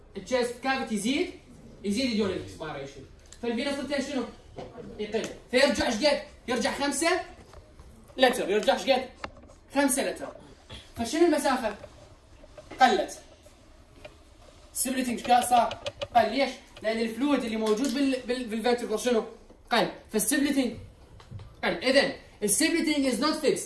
التشيست كافيتي يزيد during expiration. فالفينوس ريتيرن شنو؟ يقل. فيرجع ايش قد؟ يرجع 5 لتر. يرجع ايش قد؟ 5 لتر. فشنو المسافه؟ قلت. سبلتنج صار قل. ليش؟ لان الفلويد اللي موجود بالفنتركل شنو؟ قل. فالسبلتنج قل. اذا السبلتنج از نوت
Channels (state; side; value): identical; both; correlation 1.00